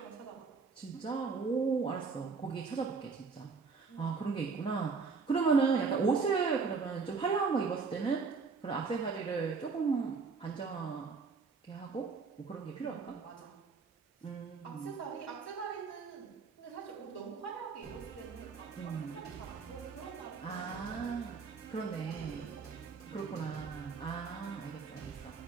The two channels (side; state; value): left; quieter; 4.9 dB